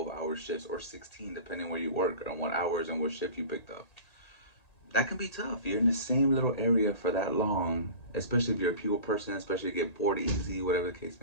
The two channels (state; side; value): late; right; 1.9 ms